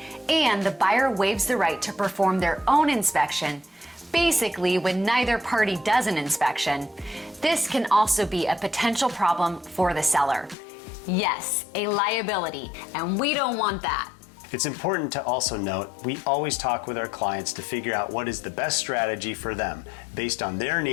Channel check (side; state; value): right; drops out; at 10.6 s